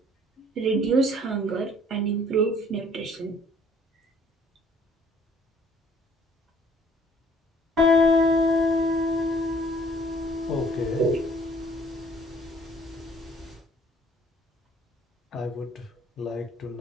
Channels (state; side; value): normal; both; correlation 0.58